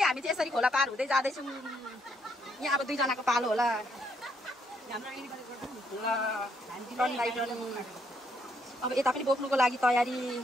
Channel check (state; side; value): normal; both; correlation 0.73